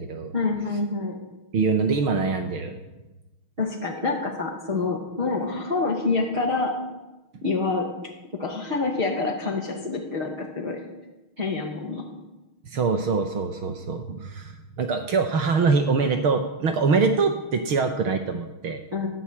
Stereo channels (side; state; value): left; late; 6.4 ms